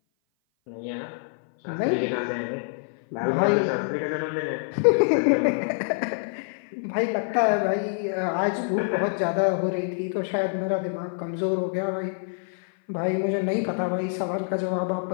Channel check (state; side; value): silent; right; 57 dB below the other